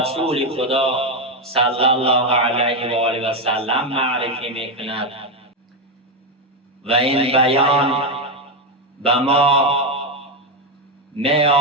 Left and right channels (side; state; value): both; normal; correlation 0.07